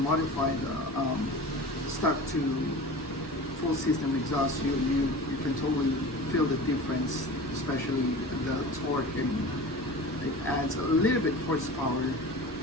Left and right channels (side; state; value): both; normal; correlation 0.35